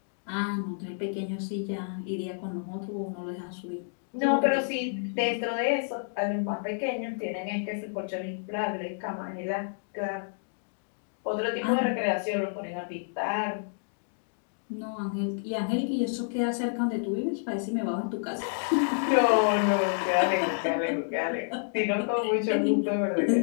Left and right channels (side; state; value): right; silent; digital silence